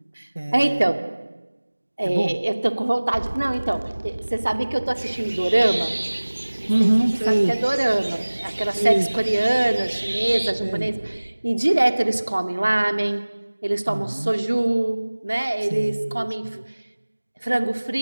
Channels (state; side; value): inverted; both; correlation -1.00